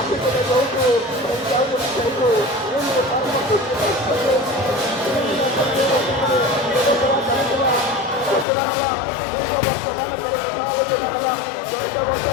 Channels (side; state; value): right; drops out; at 8.5 s